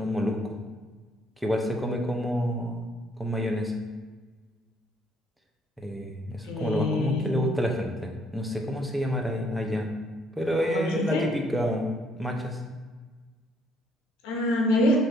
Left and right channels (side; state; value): both; normal; correlation 0.66